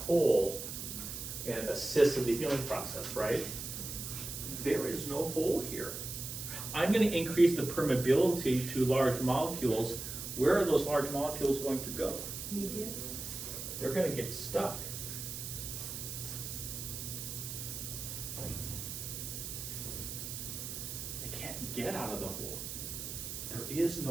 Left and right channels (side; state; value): right; noise; hiss, 7 dB below the sound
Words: hole and assist in the healing process, right? There is no hole here. I'm going to increase the permeability to large molecules. Where are those large molecules going to go? Media. They're going to get stuck. They can't get out of the hole. There is